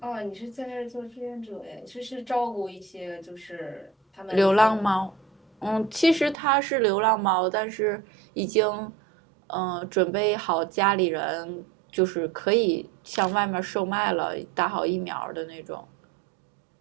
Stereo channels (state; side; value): drops out; left; at 6.4 s